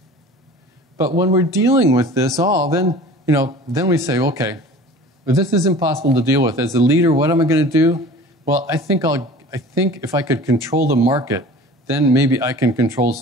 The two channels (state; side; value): normal; both; correlation 0.42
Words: But when we're dealing with this all, then we say, okay, well, this is impossible to deal with. As a leader, what am I going to do? Well, I think if I could control the market, then maybe I can control